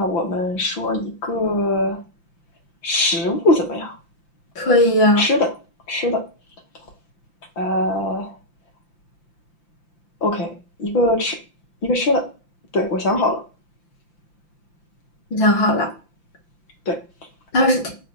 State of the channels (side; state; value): right; late; 5.8 ms